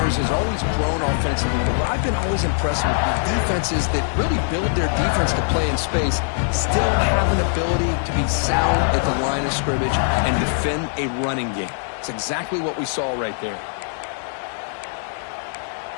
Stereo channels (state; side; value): silent; right; 61 dB below the other